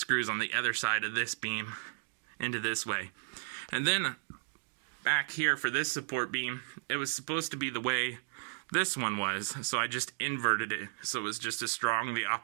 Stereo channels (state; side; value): silent; left; digital silence